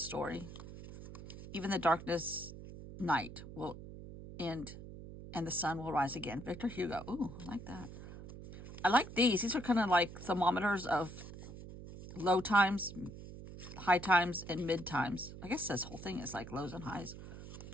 Even the darkness night will end and the sun will rise again. Victor Hugo. Ooh, I like that. I like these. These are kind of like thermometers of low times, high times, and mid times. I guess this whole thing is like lows and highs.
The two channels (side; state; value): right; noise; hum, 13 dB below the sound